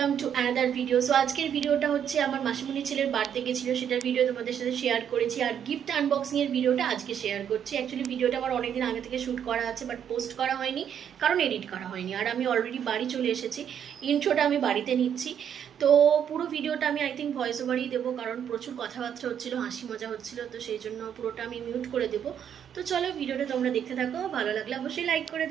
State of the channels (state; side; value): quieter; left; 8.8 dB